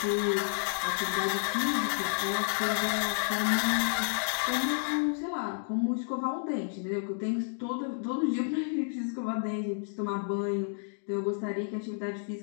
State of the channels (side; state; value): right; silent; digital silence